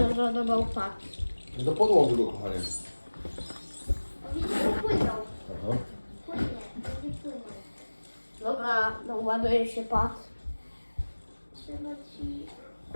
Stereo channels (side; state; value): both; inverted; correlation -1.00